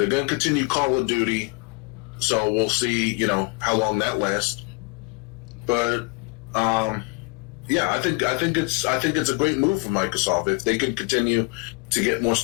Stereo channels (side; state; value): right; quieter; 29.4 dB